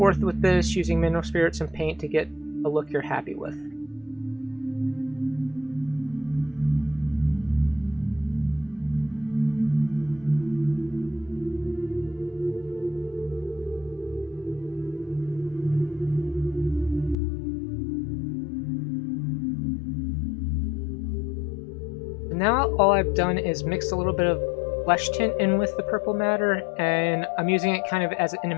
with this using mineral spirits and paint to get a look you're happy with. Now all I've done is mixed a little bit of flesh tint in with the purple matter, and I'm using it kind of as an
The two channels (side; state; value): right; drops out; at 17.2 s